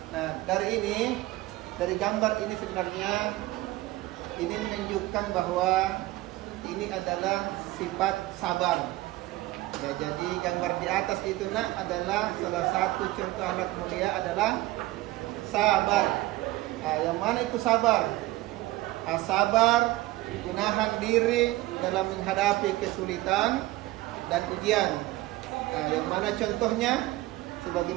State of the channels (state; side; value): quieter; left; 18.2 dB